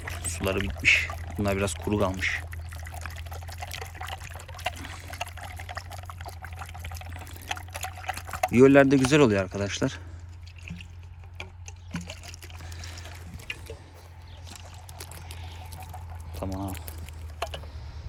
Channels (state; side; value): identical; both; correlation 1.00